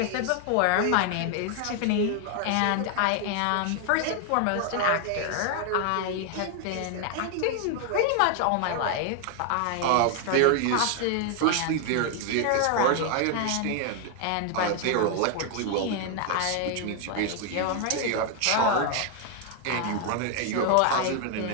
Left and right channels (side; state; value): both; different; correlation 0.00